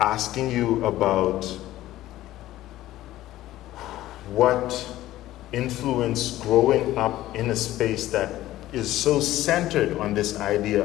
you about what influence growing up in a space that is so centered on this idea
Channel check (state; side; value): quieter; right; 15.0 dB